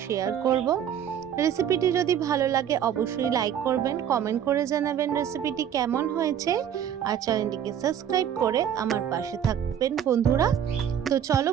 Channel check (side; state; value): left; quieter; 9.3 dB